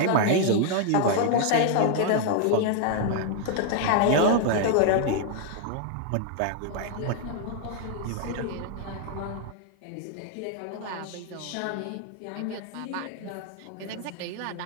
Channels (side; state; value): both; different; correlation 0.00